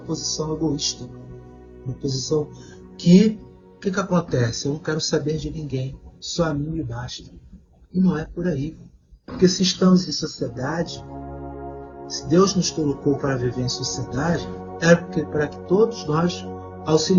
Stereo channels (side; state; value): both; identical; correlation 1.00